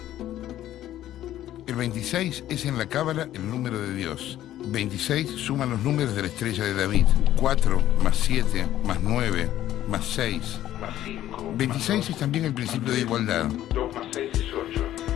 El 26 es en la cábala el número de Dios. 26 suman los números de la estrella de David. 4 más 7 más 9 más 6 más 5. 26 es también el principio de igualdad. 2 más 6 es 8.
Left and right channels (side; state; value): right; quieter; 12.9 dB